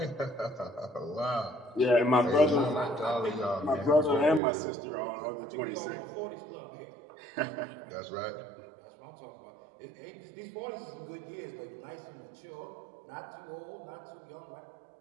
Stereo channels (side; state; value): left; drops out; at 4.4 s